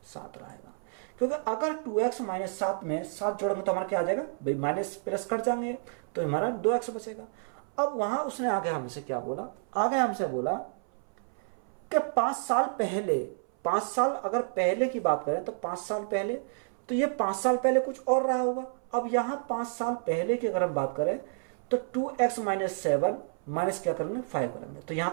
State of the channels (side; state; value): left; silent; 58 dB below the other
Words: 7 रहेगा, क्योंकि अगर 2x माइनस 7 में 7 जोड़ेंगे तो हमारा क्या आ जाएगा, भाई माइनस प्लस कट जाएंगे, तो हमारा 2x बचेगा। अब वहां उसने आगे हमसे क्या बोला, आगे हमसे बोला कि 5 साल पहले, 5 साल अगर पहले की बात करें तो 5 साल पहले, तो ये 5 साल पहले कुछ और रहा होगा। अब यहाँ 5 साल पहले की अगर हम बात करें तो 2x माइनस 7 माइनस क्या करेंगे, 5 करेंगे, तो